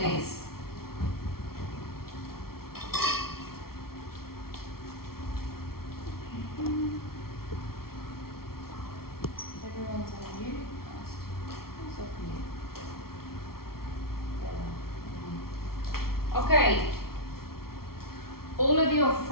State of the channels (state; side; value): late; right; 0.94 ms